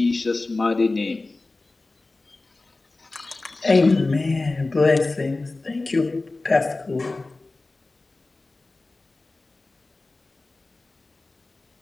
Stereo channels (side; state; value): right; quieter; 3.2 dB